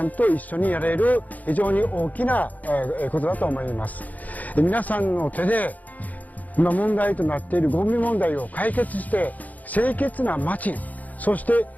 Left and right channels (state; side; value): late; right; 0.078 ms